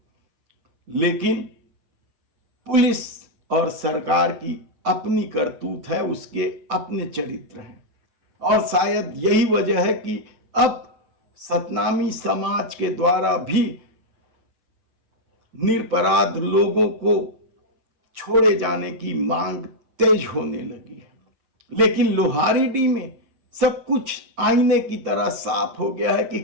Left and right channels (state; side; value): late; left; 7.8 ms